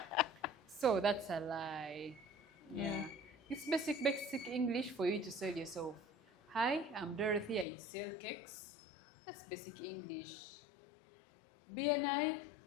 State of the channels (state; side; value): drops out; right; at 7.7 s